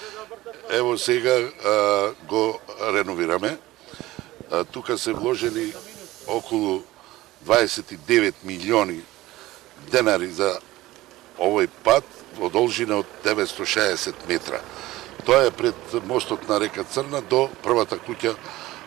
Ево сега го реновираме. Тука се вложени околу 29 милиони денари за овој пат во должина од 960 метра. Тоа е пред мостот на река Црна до првата куќа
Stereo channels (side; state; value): left; quieter; 17.5 dB